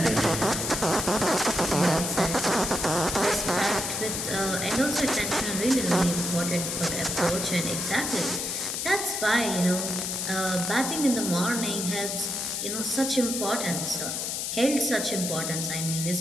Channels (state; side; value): noise; left; hiss, 2 dB below the sound